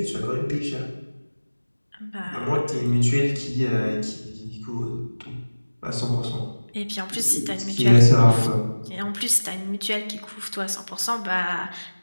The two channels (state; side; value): inverted; both; correlation -1.00